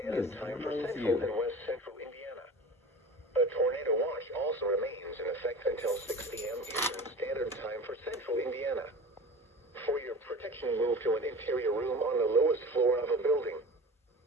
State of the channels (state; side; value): normal; both; correlation 0.36